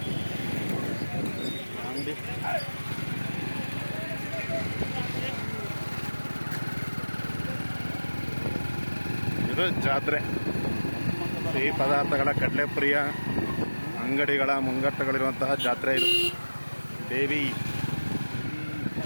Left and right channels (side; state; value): both; inverted; correlation -1.00